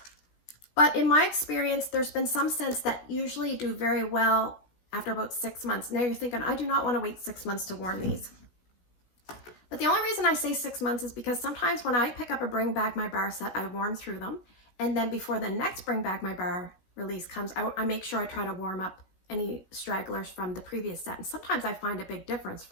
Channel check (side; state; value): right; late; 16 ms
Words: But in my experience, there's been some scents that usually do very well after about 6 months. Now you're thinking, I do not want to wait 6 months to warm these. But the only reason I say 6 months is because sometimes when I pick up a Bring Back My Bar set, I warm through them. And then before the next Bring Back My Bar release comes, I make sure I try to warm up any stragglers from the previous set. And sometimes I find a big difference